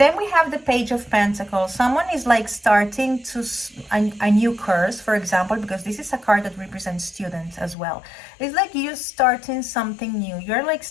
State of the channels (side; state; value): right; drops out; at 7.8 s